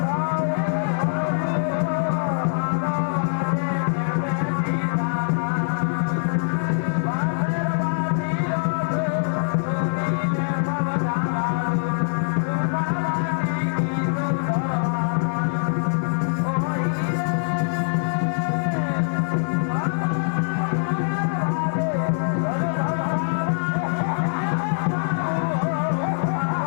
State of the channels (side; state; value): right; silent; digital silence